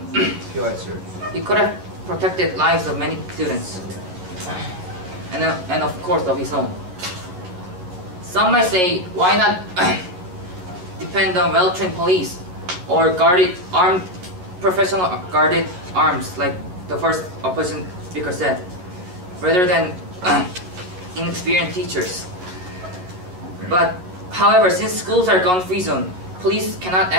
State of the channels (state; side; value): late; left; 11 ms